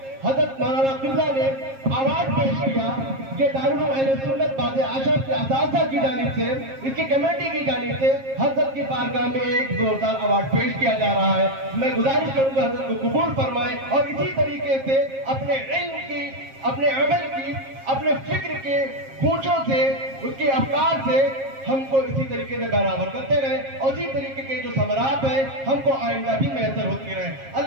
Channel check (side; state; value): left; late; 7.5 ms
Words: حضرت مولانا قبلہ نے ایوارڈ پیش کیا۔ یہ دارالعلوم اہل سنت باد اشرف کے اساتذہ کی جانب سے، اس کی کمیٹی کی جانب سے حضرت کی بارگاہ میں ایک زوردار ایوارڈ پیش کیا جا رہا ہے۔ میں گزارش کروں گا حضرت کو قبول فرمائیں اور اسی طریقے سے اپنے علم کی، اپنے عمل کی، اپنے فکر کے گونجوں سے، اس کے افکار سے ہم کو اسی طریقے سے برابر کرتے رہیں اور اسی طریقے کے جو ثمرات ہیں ہم کو آئندہ بھی میسر ہوتی رہیں۔